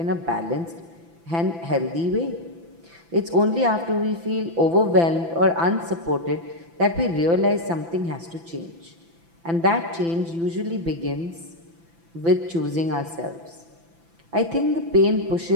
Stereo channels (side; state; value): left; late; 5.9 ms